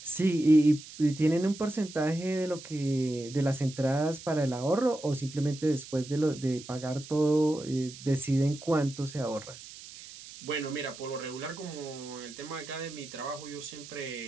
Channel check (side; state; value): right; noise; hiss, 16 dB below the sound